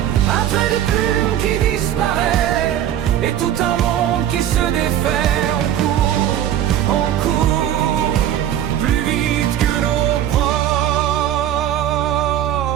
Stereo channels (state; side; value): quieter; left; 11.1 dB